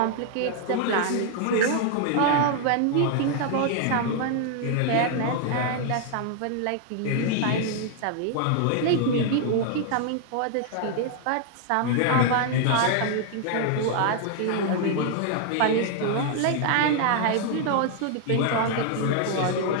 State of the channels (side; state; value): both; different; correlation 0.00